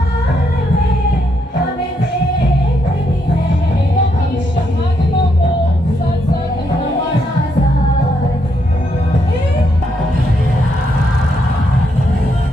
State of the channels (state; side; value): normal; both; correlation 0.77